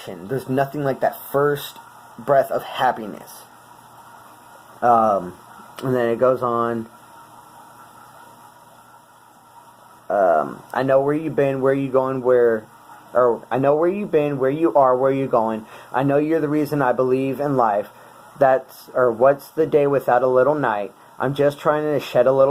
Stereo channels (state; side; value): identical; both; correlation 1.00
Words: there's nothing like that first breath of happiness. And then it goes on. I know where you've been, where you going, I know where you've been, where you are, where you're going. I know you're the reason I believe in life. What's the day without a little night? I'm just trying to shed a